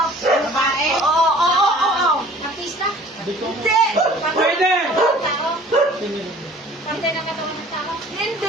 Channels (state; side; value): normal; both; correlation 0.49